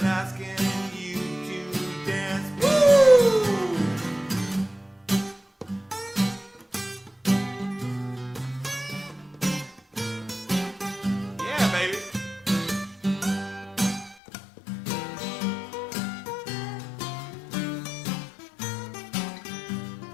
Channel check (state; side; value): drops out; right; at 14.2 s